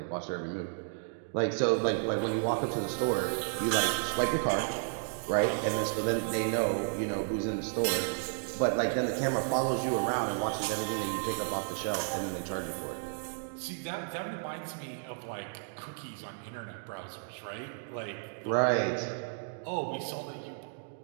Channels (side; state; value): left; silent; digital silence